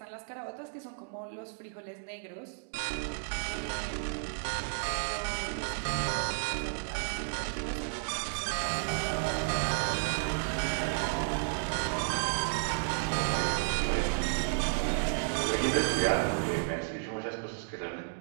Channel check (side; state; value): left; silent; digital silence